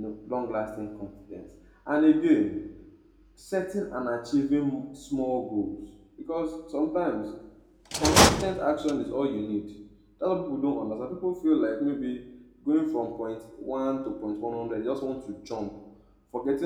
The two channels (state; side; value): identical; both; correlation 1.00